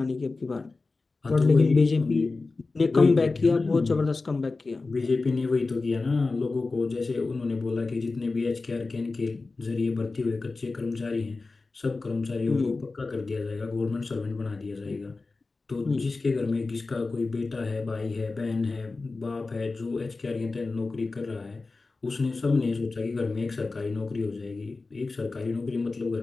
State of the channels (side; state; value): right; quieter; 3.7 dB